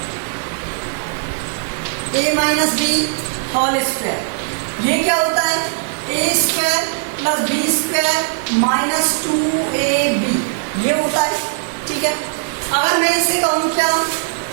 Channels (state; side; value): silent; left; 65 dB below the other